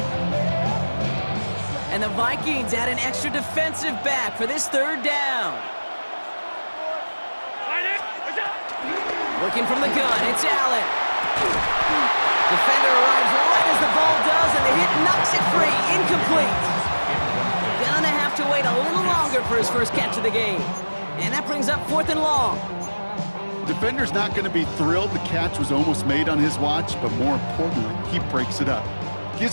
And the Vikings add an extra defensive back for this third down. Working from the gun, it's Allen. Defender arrives right as the ball does, and the hit knocks it free. Incomplete. Gonna have to wait a little longer for his first catch of the game. And that brings up fourth and long. Defender's not going to be thrilled the catch was almost made on his watch, but more importantly, he breaks it up.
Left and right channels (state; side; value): inverted; both; correlation -1.00